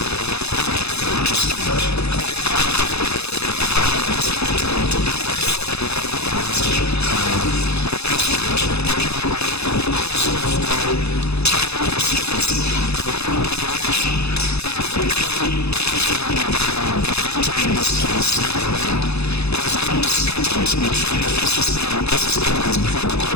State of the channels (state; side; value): late; right; 0.79 ms